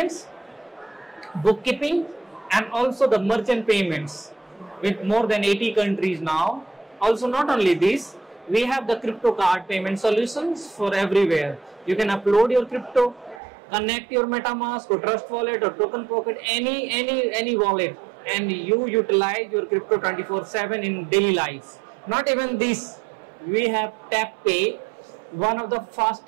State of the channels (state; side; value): drops out; left; at 13.4 s